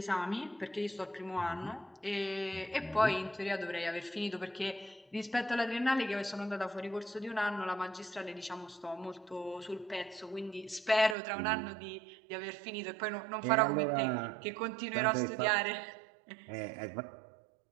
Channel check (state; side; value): drops out; left; at 11.2 s